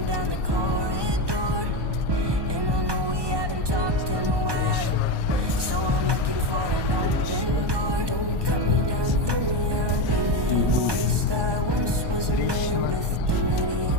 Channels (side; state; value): left; late; 1.2 ms